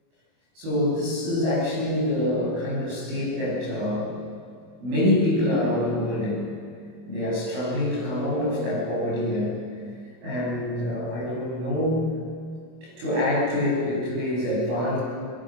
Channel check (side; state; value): left; late; 24 ms